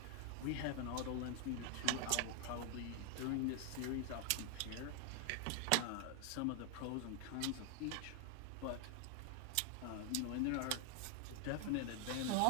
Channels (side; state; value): both; different; correlation 0.00